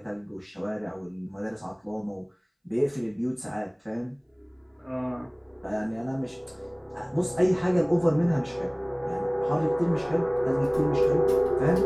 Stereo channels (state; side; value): identical; both; correlation 1.00